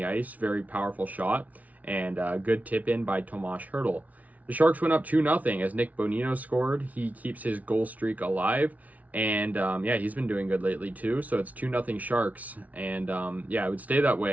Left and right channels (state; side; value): late; left; 0.072 ms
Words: ice, very powerful shot, and good tip in by Tomas Hertl. The Sharks went up 2-0 as Nick Bonino scored. He keeps his goal streak alive, and he's been doing good lately too. So it's 2-0 Sharks, and it would stay that